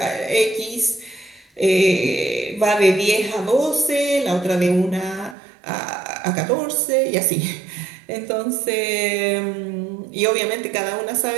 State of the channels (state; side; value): drops out; left; at 5.4 s